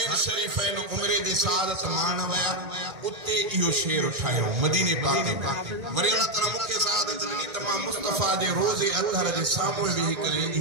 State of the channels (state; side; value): late; left; 1.9 ms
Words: शरीफैन उम्रे दे सादत मान वया उते इहो शेर उठायो मदीने पाक में। वरी अल्लाह तआला मुखे सादत दी तमाम मुस्तफा दे रोजे अतहर दे सामने वेही करे